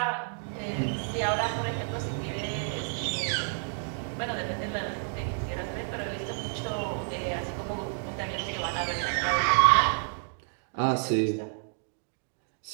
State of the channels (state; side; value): silent; left; 58 dB below the other